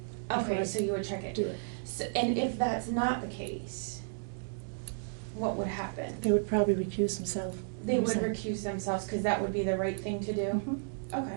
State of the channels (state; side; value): silent; left; digital silence